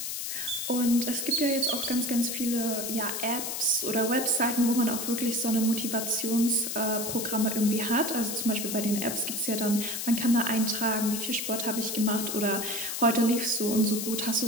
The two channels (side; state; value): left; noise; hiss, 4 dB below the sound